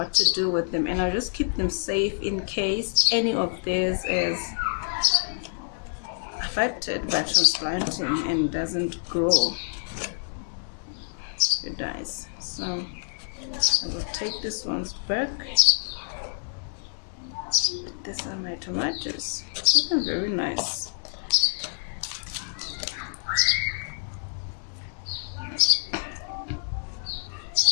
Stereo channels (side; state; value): right; silent; digital silence